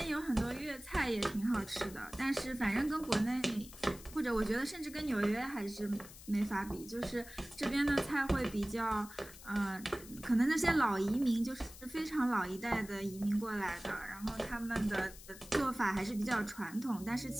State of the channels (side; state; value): left; noise; hiss, 17 dB below the sound